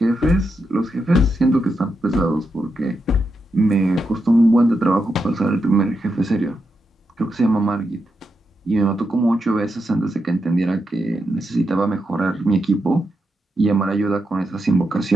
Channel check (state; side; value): normal; both; correlation 0.85